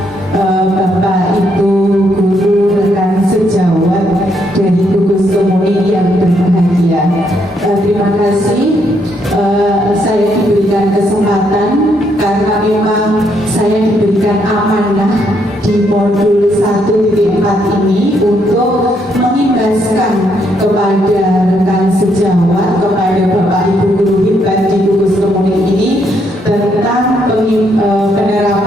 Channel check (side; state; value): both; normal; correlation 0.74